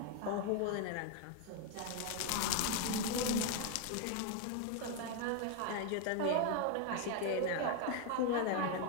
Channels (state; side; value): different; both; correlation 0.01